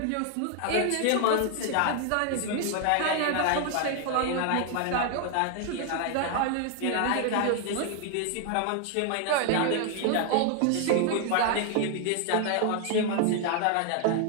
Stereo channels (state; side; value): different; both; correlation 0.00